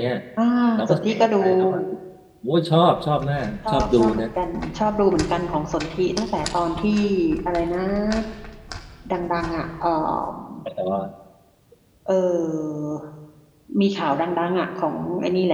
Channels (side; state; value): both; identical; correlation 1.00